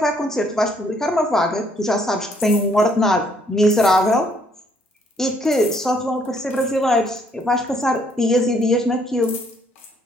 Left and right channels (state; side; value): normal; both; correlation 0.66